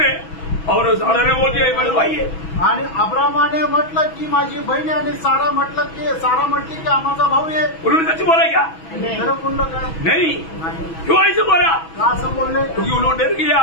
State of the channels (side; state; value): right; late; 6.1 ms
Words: और सारा ने बोल दिया ये मेरा भाई है. आणि अब्रामाने म्हटलं की माझी बहीण आहे, आणि सारा म्हटली की आमचा भाऊ आहे. उन्होंने सच बोला क्या? खरं बोललं काय? नहीं. नाही. क्यों ऐसे बोला? का असं बोलले? क्योंकि उन्होंने डर गया.